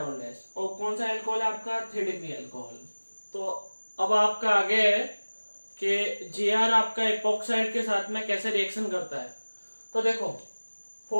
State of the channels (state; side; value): inverted; both; correlation -1.00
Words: dash, और कौन सा अल्कोहल आपका 3 डिग्री अल्कोहल। तो अब आपका आगे है कि Gr आपका इपोक्साइड के साथ में कैसे रिएक्शन करता है। तो देखो